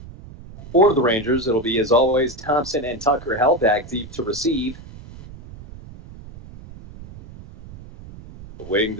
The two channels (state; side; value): noise; right; rumble, 16 dB below the sound